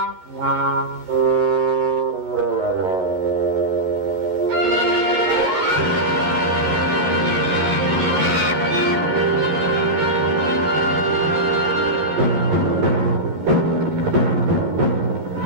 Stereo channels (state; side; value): late; left; 13 ms